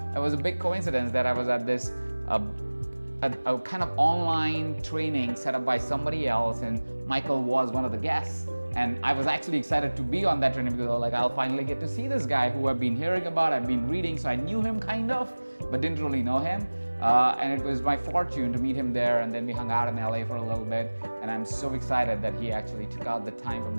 It was a big coincidence that I was at this a kind of online training set up by somebody else, and Michael was one of the guests. And I was actually excited to be on that training because I'll finally get to see this guy who I've been hearing about, I've been reading, so I knew him kind of, but didn't really know him. And it was my fortune to meet him there, and then we hung out in LA for a little bit, and I'm so excited that he actually took out the time from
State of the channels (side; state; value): both; inverted; correlation -1.00